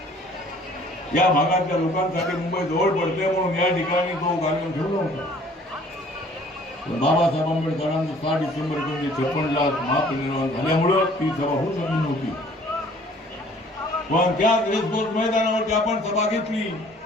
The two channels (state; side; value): normal; both; correlation 0.55